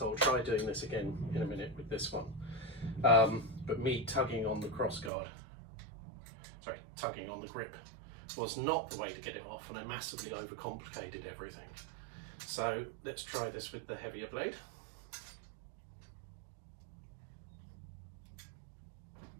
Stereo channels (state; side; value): drops out; left; at 5.1 s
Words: I'll try doing this again in a minute with this one. But me tugging on the cross guard, tugging on the grip, was not the way to get it off, and I massively overcomplicated everything. So let's try this with the heavier blade.